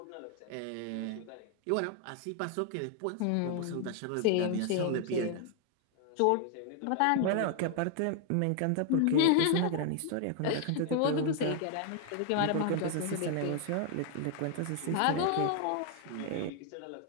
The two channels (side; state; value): both; different; correlation 0.00